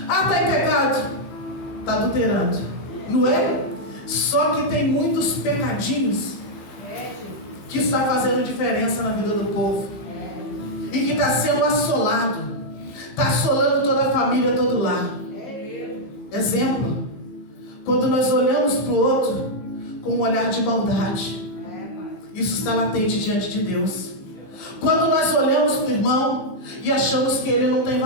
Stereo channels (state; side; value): late; right; 15 ms